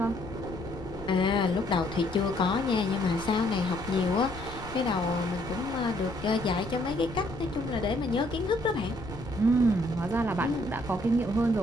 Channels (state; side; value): noise; left; rumble, 14 dB below the sound